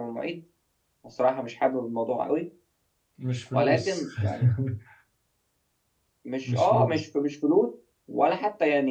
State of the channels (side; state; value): both; identical; correlation 1.00